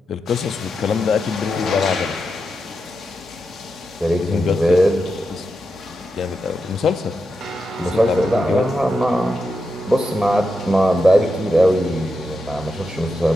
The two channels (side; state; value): both; normal; correlation 0.87